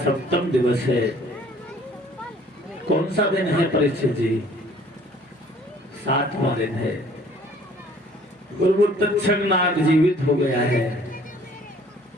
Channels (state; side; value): normal; both; correlation 0.56